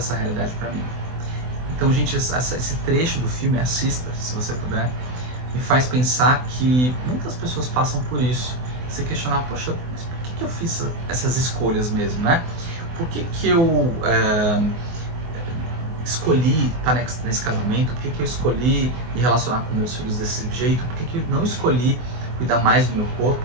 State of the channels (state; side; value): late; left; 24 ms